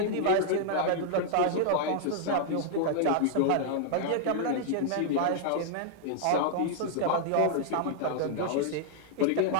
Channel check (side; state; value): both; different; correlation -0.01